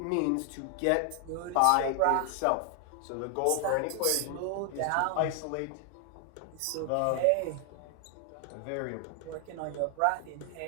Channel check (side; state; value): both; different; correlation 0.00